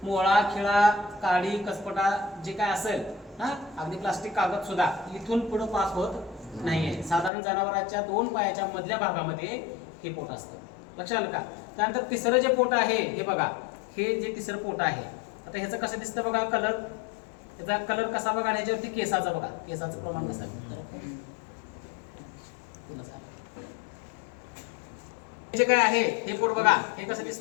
मोळा, खिळा, काडी, कसपटा जे काय असेल, अगदी प्लास्टिक, कागद सुद्धा इथून पुढे पास होत नाहीये. साधारण जनावरांच्या 2 पायाच्या मधल्या भागामध्ये हे पोट असतं. लक्षात आलं का? त्यानंतर तिसरं जे पोट आहे हे बघा, हे जे तिसरं पोट आहे, आता ह्याचं कसं दिसतं बघा कलर, ह्याचा कलर कसा बघा, आणि ह्याच्यावरती केसाचा बघा, केसाचं प्रमाण कसं जे काय आहे हे पोट बघा, हे कसं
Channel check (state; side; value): drops out; right; at 7.3 s